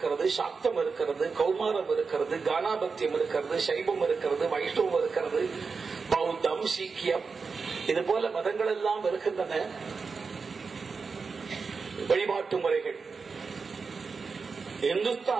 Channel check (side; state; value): left; quieter; 4.9 dB